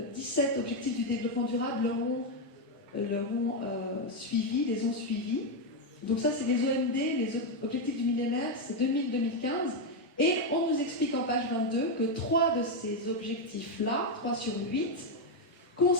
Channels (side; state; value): both; normal; correlation 0.04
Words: 17 objectifs du développement durable les ont suivis. Donc ça, c'est les OMD, les objectifs du millénaire, c'est 2000-2015. Et on nous explique en page 22 que 3 de ces objectifs-là, 3 sur 8,